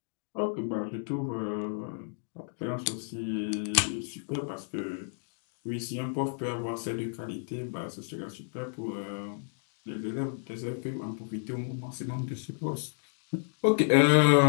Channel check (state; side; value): silent; right; digital silence